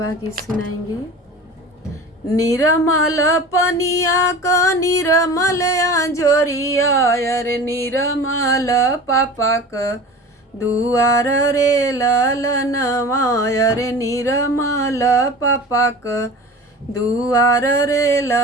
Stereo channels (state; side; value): normal; both; correlation 0.37